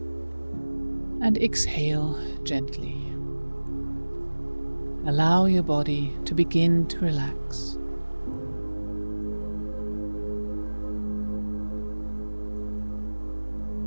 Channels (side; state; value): both; inverted; correlation -1.00